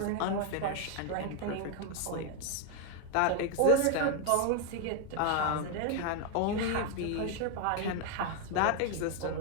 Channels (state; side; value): different; both; correlation 0.01